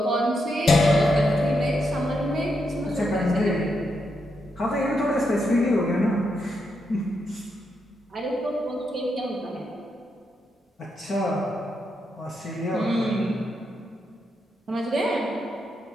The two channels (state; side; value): normal; both; correlation 0.82